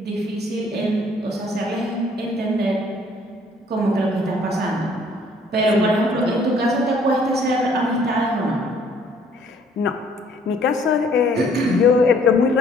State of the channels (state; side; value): normal; both; correlation 0.60